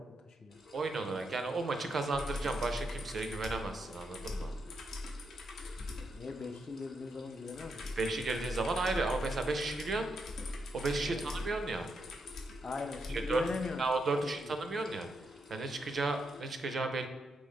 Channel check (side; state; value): both; normal; correlation 0.82